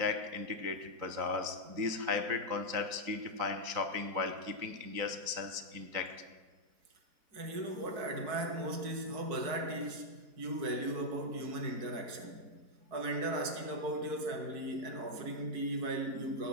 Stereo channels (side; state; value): left; late; 4.6 ms